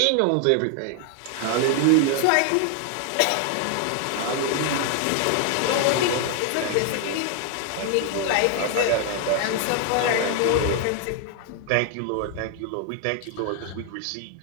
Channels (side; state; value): both; different; correlation 0.00